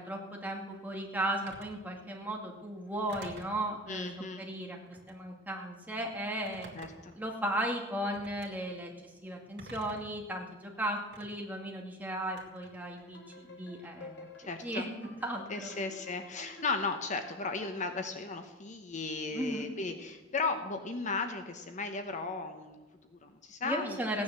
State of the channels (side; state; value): both; normal; correlation 0.30